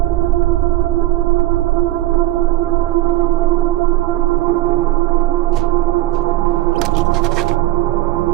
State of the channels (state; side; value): quieter; left; 16.3 dB